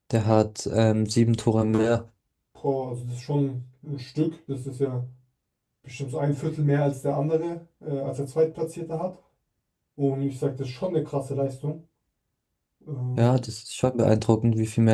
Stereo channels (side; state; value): both; identical; correlation 1.00